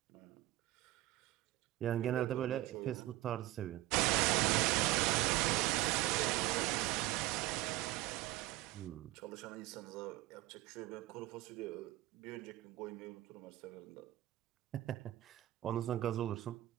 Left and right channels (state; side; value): quieter; left; 16.7 dB